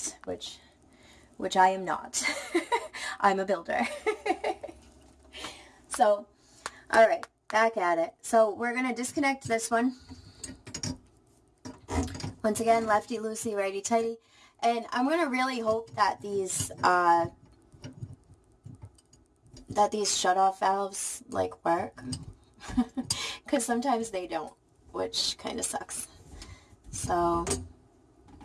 which I am not. I'm a builder. So, alright, back at it. So, we're going to disconnect this one. Once again, lefty loosey, righty tighty. And I'm going to really hope that these shutoff valves, like, work. Because sometimes they don't, which kind of sucks. So,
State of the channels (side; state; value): both; identical; correlation 1.00